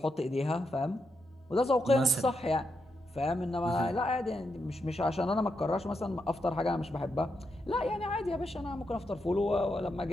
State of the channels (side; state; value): both; normal; correlation 0.83